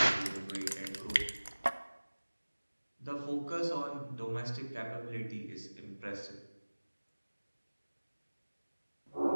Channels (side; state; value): both; inverted; correlation -1.00